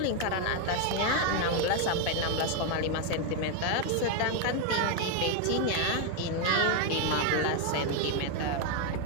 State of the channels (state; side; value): different; both; correlation 0.01